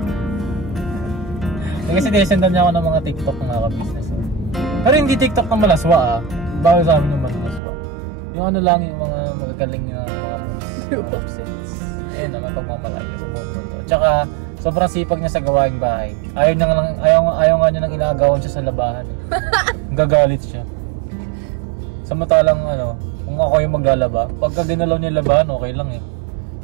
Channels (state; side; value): drops out; left; at 7.6 s